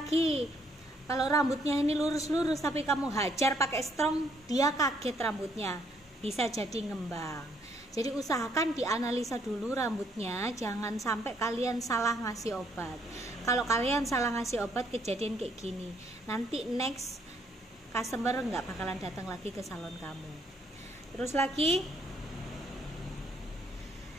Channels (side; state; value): both; normal; correlation 0.69